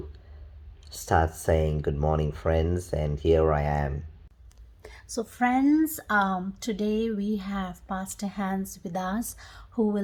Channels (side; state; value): both; identical; correlation 1.00